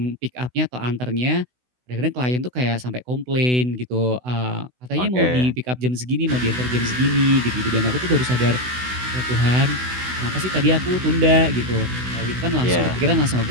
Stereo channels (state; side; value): late; left; 16 ms